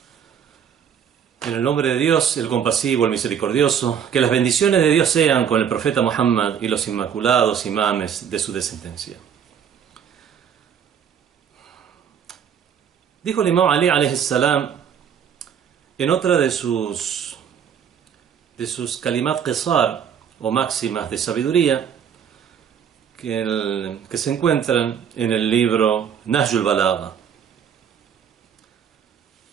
En el nombre de Dios, el compasivo, el misericordioso, que las bendiciones de Dios sean con el profeta Muhammad y los inmaculados imames de su descendencia. Dijo el imam Ali alayhi salam en otra de sus kalimat qisar o máximas de sabiduría que se encuentran en el libro Nahjul Balagha:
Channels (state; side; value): quieter; left; 8.1 dB